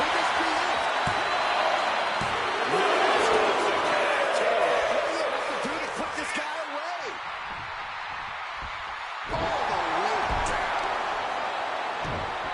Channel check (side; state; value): both; identical; correlation 1.00